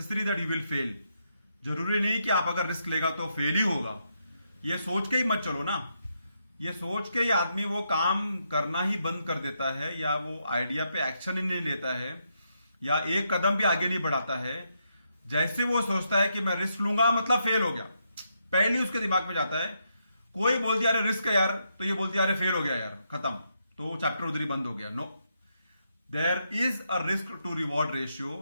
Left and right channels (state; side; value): inverted; both; correlation -0.80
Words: that you will fail. जरूरी नहीं कि आप अगर risk लेगा तो फेल ही होगा। ये सोच के ही मत चलो ना। ये सोच के ही आदमी वो काम करना ही बंद कर देता है, या वो आइडिया पे एक्शन ही नहीं लेता है, या एक कदम भी आगे नहीं बढ़ाता है। जैसे वो सोचता है कि मैं रिस्क लूंगा मतलब फेल हो गया, पहले ही उसके दिमाग में जाता है। कोई बोल दिया अरे रिस्क है यार, तो ये बोलती है अरे फेल हो गया यार, खत्म, तो चैप्टर उधर ही बंद हो गया। No, there is a risk to reward ratio